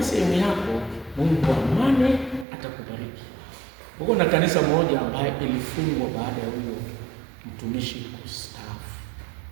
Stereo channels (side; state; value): left; drops out; at 2.5 s